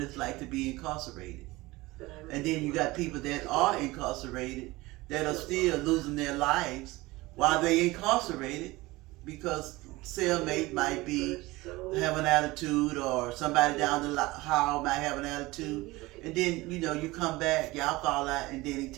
like to be incarcerated. And then you got people that are incarcerated that are still losing their lives while they incarcerated because cellmate might be have an attitude, or somebody down the hall might have an attitude, and then you come back, y'all fall out, and then he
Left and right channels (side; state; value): left; quieter; 20.7 dB